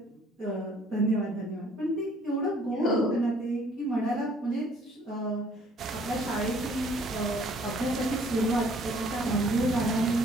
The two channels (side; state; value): both; normal; correlation 0.59